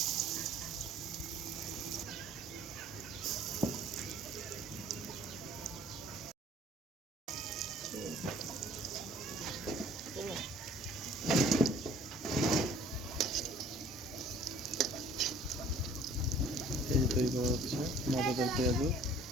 এই যে তৈরি করা হচ্ছে মজাদার পেঁয়াজু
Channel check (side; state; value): both; normal; correlation 0.52